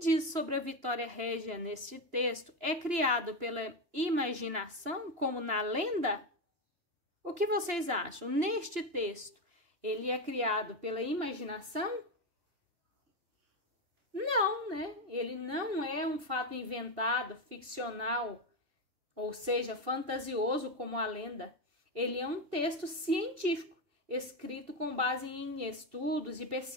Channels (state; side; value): late; left; 2.9 ms